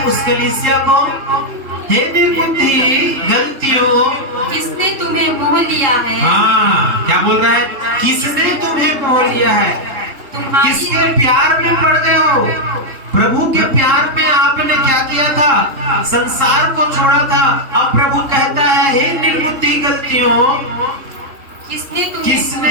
उस कलीसिया को, हे निर्बुद्धि गलतियों, किसने तुम्हें मोह लिया है। हाँ, क्या बोल रहा है, किसने तुम्हें मोह लिया है, किसके प्यार में पड़ गए हो। प्रभु के प्यार में आपने क्या किया था, संसार को छोड़ा था। अब प्रभु कहता है, हे निर्बुद्धि गलतियों,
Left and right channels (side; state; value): left; late; 3.2 ms